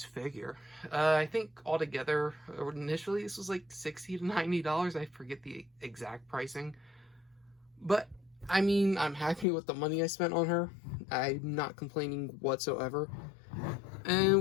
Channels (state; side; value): drops out; right; at 9.5 s